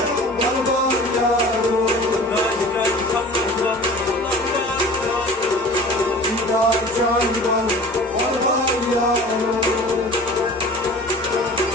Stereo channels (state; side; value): normal; both; correlation 0.42